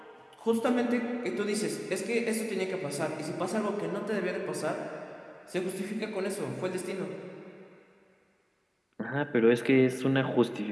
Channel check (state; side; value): identical; both; correlation 1.00